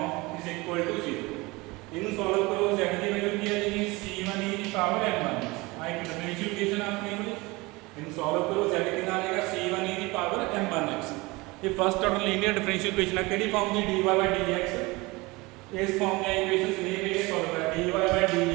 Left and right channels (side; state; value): left; quieter; 23.3 dB